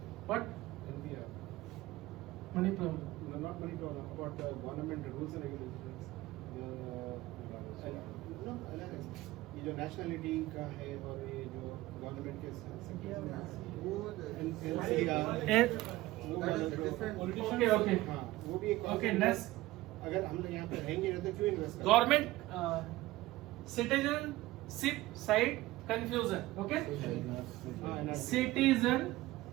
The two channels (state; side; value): quieter; left; 18.0 dB